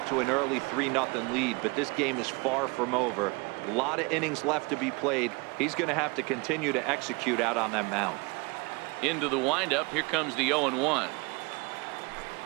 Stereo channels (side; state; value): left; quieter; 28.3 dB